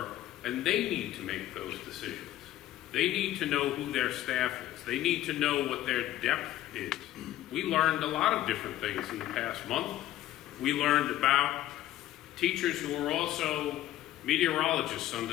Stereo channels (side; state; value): right; quieter; 13.9 dB